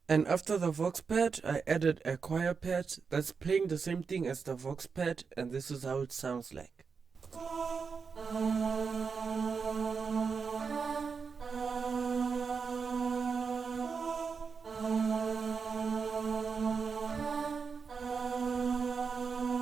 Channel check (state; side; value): quieter; left; 5.5 dB